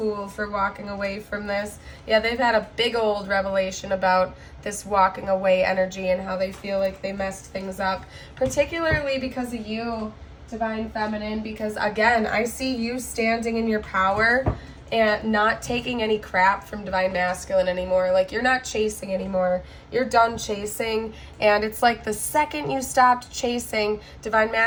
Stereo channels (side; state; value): both; identical; correlation 1.00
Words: for walking away from this. Yeah, they've had a big old revelation about this walking away energy and how they feel like they messed things up. Particularly because of you, Divine Feminine. Because, again, I see you standing in your power and not taking any crap from Divine Masculine anymore. Like, you're not chasing anymore. You're done chasing. And it's like the second you stopped chasing, Divine